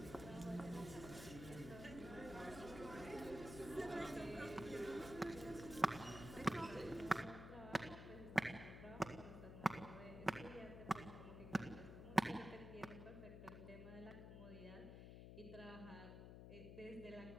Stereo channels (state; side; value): noise; left; hum, 10 dB below the sound